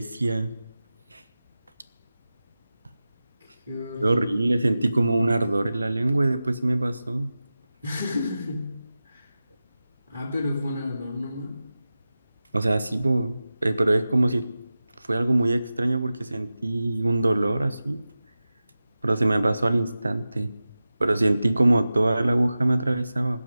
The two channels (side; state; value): both; inverted; correlation -0.95